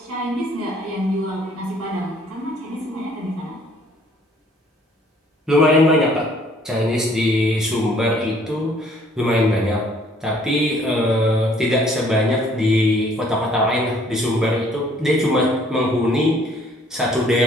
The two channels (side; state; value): both; normal; correlation 0.60